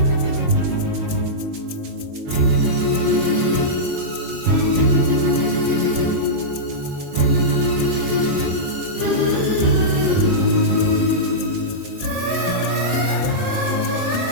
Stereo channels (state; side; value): late; left; 22 ms